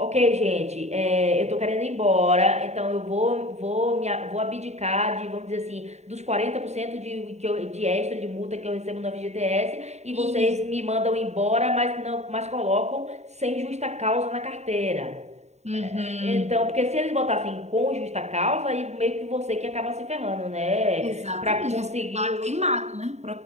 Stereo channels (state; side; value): late; left; 0.32 ms